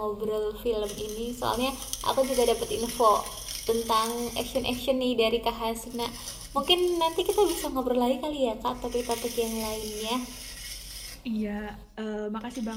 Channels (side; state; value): both; identical; correlation 1.00